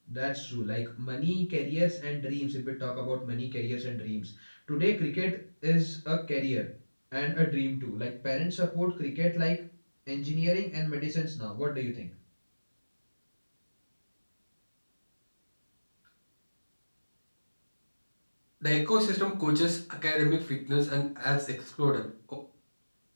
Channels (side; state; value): both; inverted; correlation -1.00